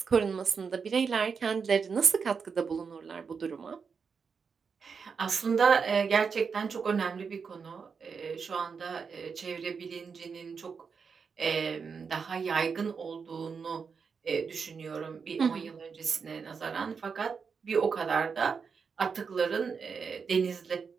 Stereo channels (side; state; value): left; quieter; 5.7 dB